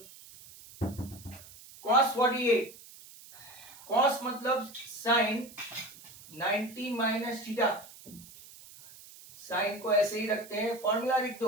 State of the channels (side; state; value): right; noise; hiss, 19 dB below the sound